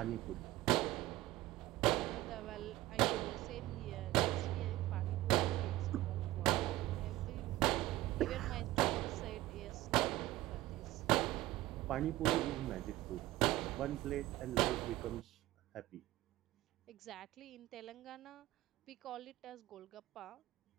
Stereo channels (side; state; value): left; quieter; 16.8 dB